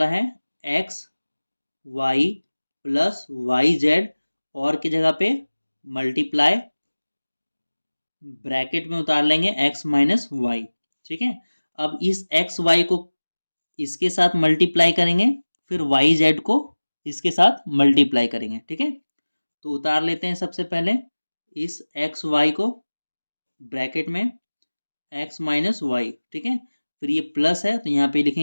है x y + yz, और की जगह पे मल्टीप्लाई, ब्रैकेट में उतार लेंगे x - y, ठीक है। अब इस x y को इसके साथ मल्टीप्लाई करेंगे, फिर वाई जेड को इसके साथ मल्टीप्लाई करेंगे, ठीक है। तो उतार लेते हैं सबसे पहले इस एक्स वाई को ब्रैकेट में, x - y, ठीक है। फिर ये प्लस है तो यहाँ पे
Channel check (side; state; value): both; inverted; correlation -1.00